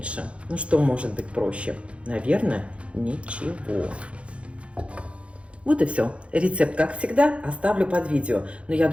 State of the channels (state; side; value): late; left; 0.061 ms